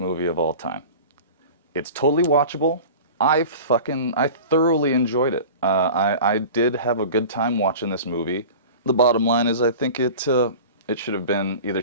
movie of all time. It's totally watchable. I thoroughly enjoyed it. I did have a good time watching this movie. The bottom line is I think it should have been either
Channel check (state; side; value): inverted; both; correlation -0.37